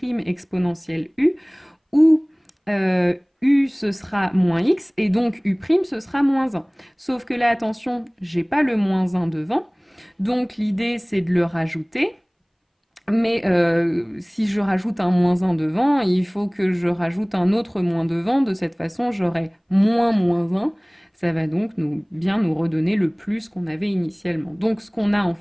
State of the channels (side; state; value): both; identical; correlation 1.00